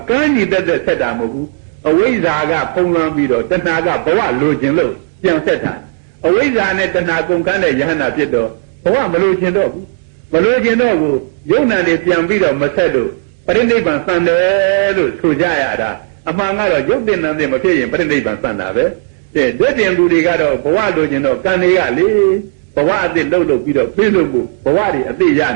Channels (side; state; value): left; silent; digital silence